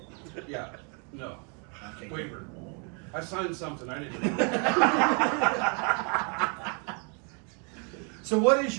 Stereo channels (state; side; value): quieter; left; 36.7 dB